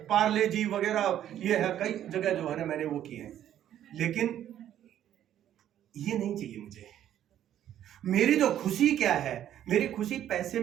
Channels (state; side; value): quieter; left; 11.2 dB